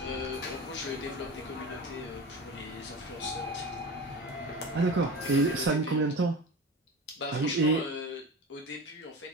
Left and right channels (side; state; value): both; normal; correlation 0.30